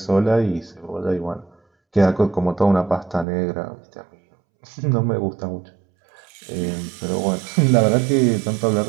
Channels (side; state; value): left; drops out; at 3.2 s